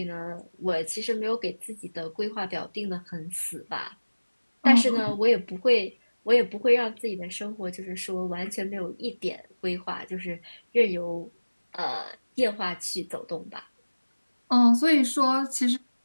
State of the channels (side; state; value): both; inverted; correlation -1.00